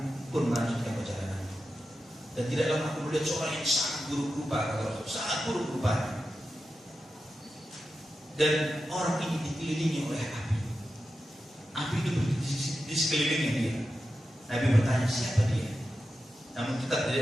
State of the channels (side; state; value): both; normal; correlation 0.91